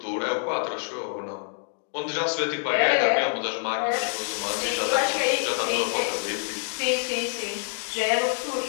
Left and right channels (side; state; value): right; silent; 57 dB below the other